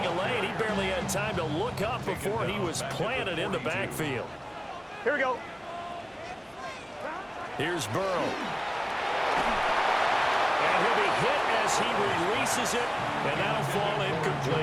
a lane. He barely had time to look up before he was planted in the backfield. Here we go. Here's Burrow. And he'll be hit as he releases it, and that'll fall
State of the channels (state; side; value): identical; both; correlation 1.00